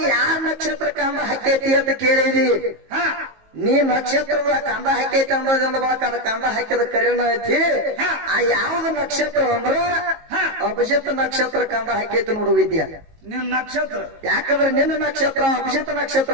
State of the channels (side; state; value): left; late; 19 ms